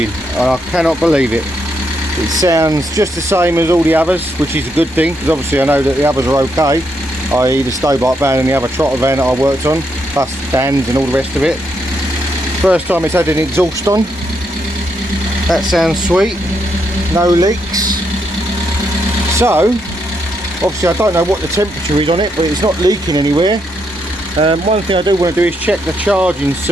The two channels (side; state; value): both; normal; correlation 0.78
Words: and I cannot believe it. It sounds just the same as all the others, which is a good thing, because obviously I know that the others are okay, i.e. the Stobart van and the other trotter van that I worked on, plus Dan's and all the rest of it. First time it's had an exhaust on. That sounds sweet. No leaks. So, obviously I don't know what the temperature is on it, but it's not leaking anywhere. One thing I do want to do is check the charging